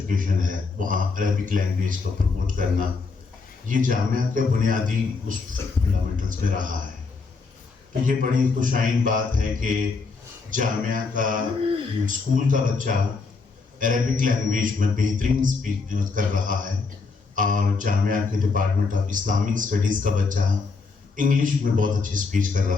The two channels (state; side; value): quieter; right; 4.4 dB